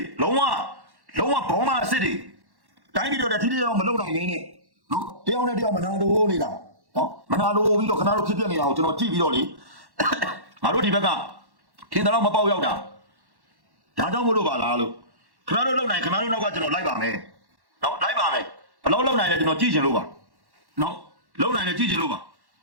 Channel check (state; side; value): late; left; 1.1 ms